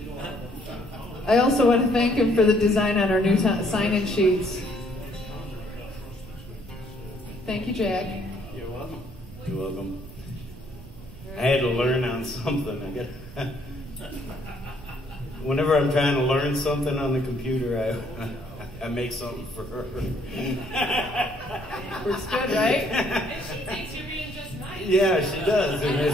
I also want to thank him for the design on our new sign-in sheets. Thank you, Jack. You're welcome. You're welcome. I had to learn on something. Whenever I'm trying to learn something on the computer, I make something for her. Works good, right? And she thinks you're being just nice. Yeah, she does. And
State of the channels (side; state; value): right; noise; rumble, 17 dB below the sound